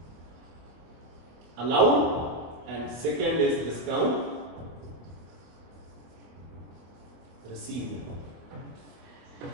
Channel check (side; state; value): left; late; 24 ms